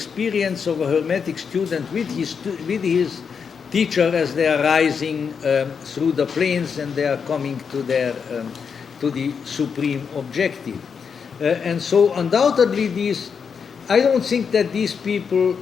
of a Hermetic student with his teacher as they are rising through the planes and they are coming to the supreme objective. And so undoubtedly I don't think that these people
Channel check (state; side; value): quieter; right; 6.3 dB